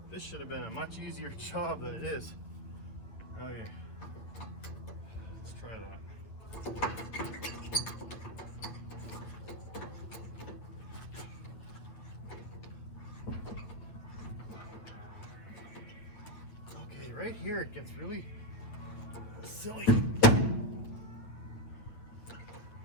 This should have been a much easier job than it is. Okay, let's try that. Okay, right here it gets really silly.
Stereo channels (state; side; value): late; right; 8.8 ms